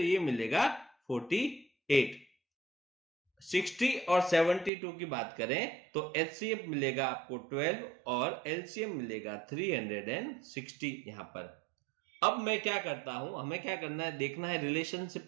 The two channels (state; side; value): drops out; left; at 4.7 s